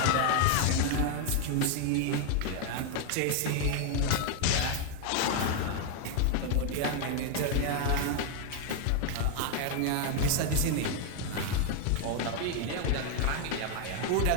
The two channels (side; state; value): both; different; correlation 0.00